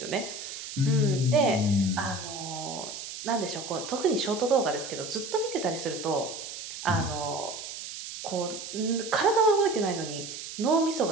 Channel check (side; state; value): right; noise; hiss, 9 dB below the sound